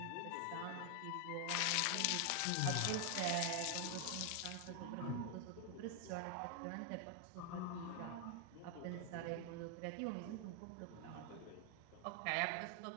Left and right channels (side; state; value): both; different; correlation 0.00